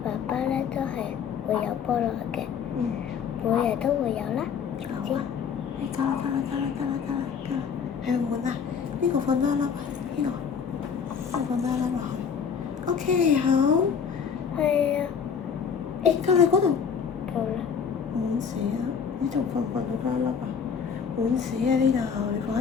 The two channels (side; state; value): right; quieter; 6.7 dB